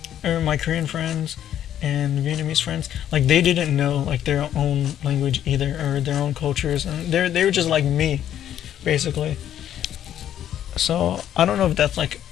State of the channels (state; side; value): quieter; right; 10.7 dB